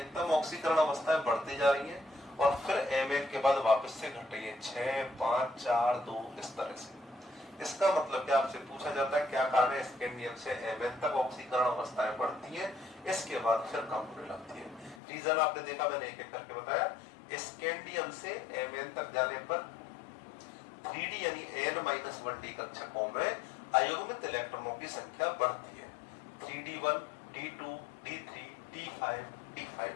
ऑक्सीकरण अवस्थाएं बढ़ती जा रही हैं और फिर Mn के बाद वापस से घट रही है 6 5 4 2 इस तरह से। इसका मतलब क्या, आपसे पूछा जाता है क्या कारण है स्कैंडियम से Mn तक ऑक्सीकरण अवस्थाएं बढ़ती हैं, इसके बाद फिर कम होने लगती है। रीजन आपने देखा, मैंने एक एक करके बताया। स्कैंडियम से Mn तक जाने पर 3d यानी n-1d कक्षकों में अयुग्मित इलेक्ट्रॉनों की संख्या बढ़ती है, 3d1 d2 d3 d5 d5।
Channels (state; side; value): drops out; right; at 15.0 s